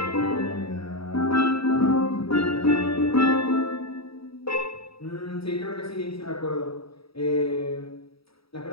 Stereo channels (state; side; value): late; right; 0.76 ms